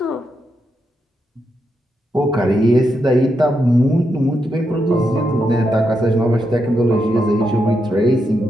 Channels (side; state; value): both; normal; correlation 0.83